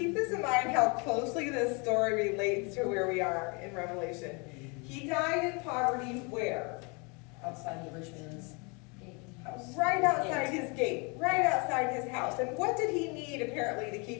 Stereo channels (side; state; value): right; quieter; 31.5 dB